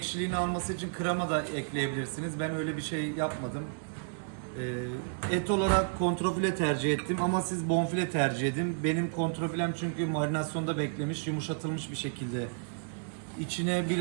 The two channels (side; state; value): left; silent; digital silence